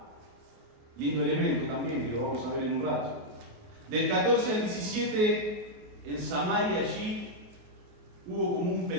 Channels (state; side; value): late; left; 28 ms